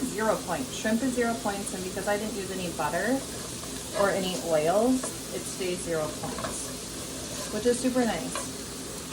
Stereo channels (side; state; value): both; identical; correlation 1.00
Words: 0 points. Shrimp is 0 points, and because I didn't use any butter or any oils, it stays 0 points, which is super nice.